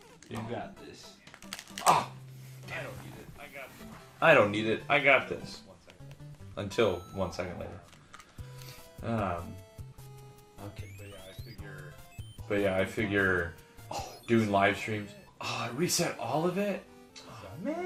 You got this. Oh, I don't need it. I got this. I don't need it. I got this. Until 1 second later. Okay. But yeah, I figure. Doing live streams. Oh, I reset all of it? Oh,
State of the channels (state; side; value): identical; both; correlation 1.00